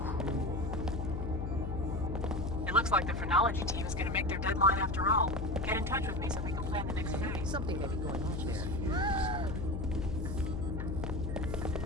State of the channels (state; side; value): noise; left; hum, 3 dB below the sound